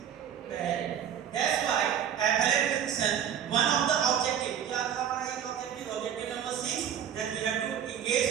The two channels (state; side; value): quieter; left; 9.2 dB